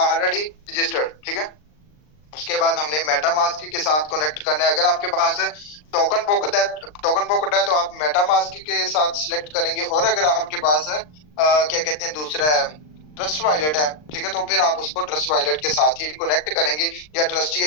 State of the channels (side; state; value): right; late; 39 ms